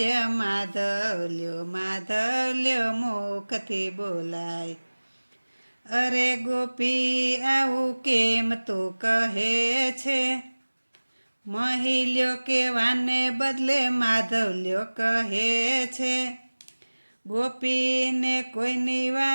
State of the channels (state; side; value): inverted; both; correlation -1.00